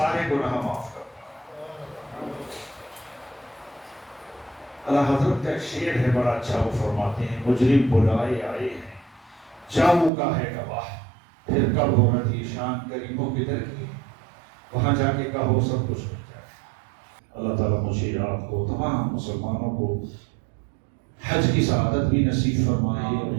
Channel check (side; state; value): left; drops out; at 10.1 s